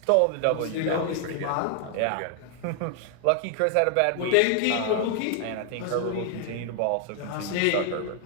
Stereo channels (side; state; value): both; different; correlation 0.00